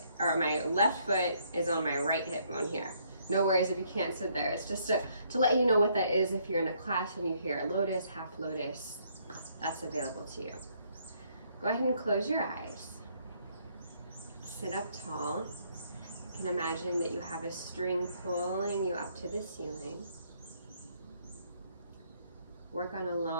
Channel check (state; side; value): inverted; both; correlation -0.68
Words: foot is on my right hip bone here. No worries if you can't sit there. It's just to let you know what that is if you're in a class and you hear lotus, half lotus, that's available to you. Go ahead and close your eyes. Sit up tall. You can imagine that you have a string pulling you up to the ceiling. Work on